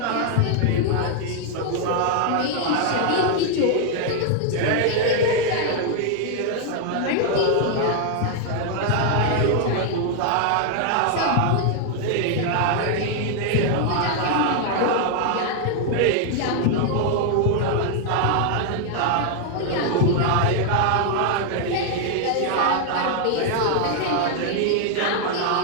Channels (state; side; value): different; both; correlation 0.00